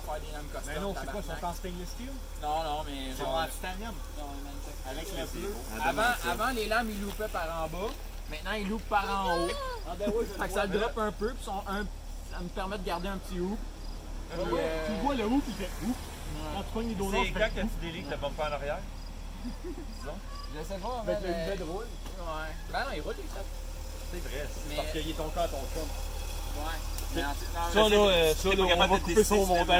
faire des lames custom. Mais non, c'est quoi, ils tabarnak. sont en stainless steel? Non, mais Ils genre. sont en titanium. Avec le bleu. Avant, Avant, les lames, ils loupaient par en bas. Maintenant, ils loupent par en haut. Ah ben oui, Fait que ça le drop un peu, puis ça me permet de garder un petit hoop. Puis, Tu vois le hoop, il fait ouf. Quand tu pognes les donuts, C'est quand que tu délites le bumper en arrière? je sais pas, avec mais. le bed roule. Ouais. Ben non, il roule, les ça. C'est vrai. Mais. Parce qu'il est ton corps à ton chum. Ouais. Mais en- non, Ça mais- là, T'es pas capable de couper son décider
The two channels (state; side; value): identical; both; correlation 1.00